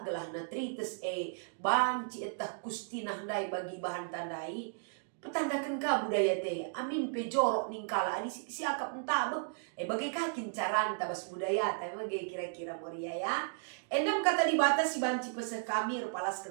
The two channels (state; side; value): silent; left; digital silence